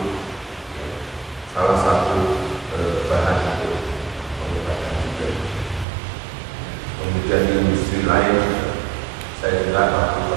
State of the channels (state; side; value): drops out; left; at 5.9 s